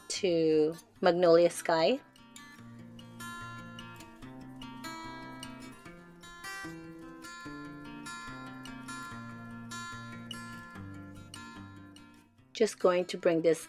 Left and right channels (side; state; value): both; identical; correlation 1.00